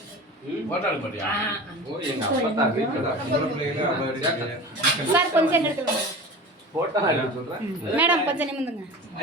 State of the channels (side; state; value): both; normal; correlation 0.34